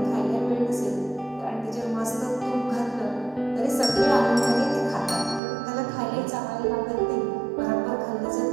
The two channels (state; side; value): drops out; left; at 5.4 s